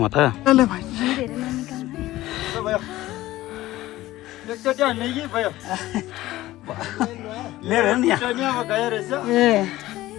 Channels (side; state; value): right; quieter; 16.4 dB